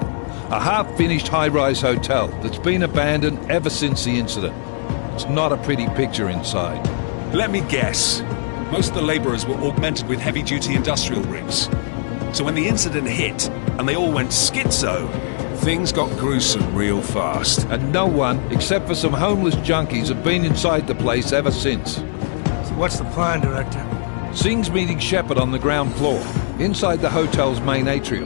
A half-finished high-rise hotel that's been abandoned ever since the incident. It's not a pretty picture inside. Let me guess. Most of the laborers were augmented with heavy-duty industrial rigs. So when the incident hit, and they all went schizo, things got gruesome real fast. And no one, except for some homeless junkies, have been inside the place ever since. So what's the plan, Director? Singh's meeting Shepard on the ground floor, inside the hotel's main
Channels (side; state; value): right; silent; digital silence